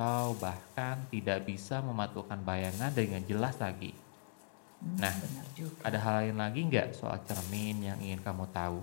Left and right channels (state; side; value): silent; right; digital silence